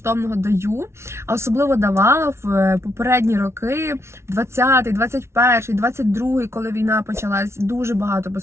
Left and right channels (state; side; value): late; left; 0.13 ms